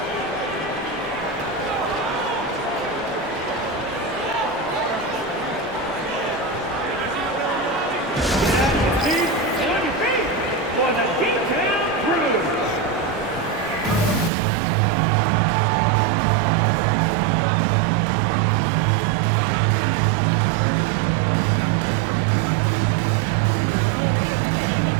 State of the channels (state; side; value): drops out; left; at 14.3 s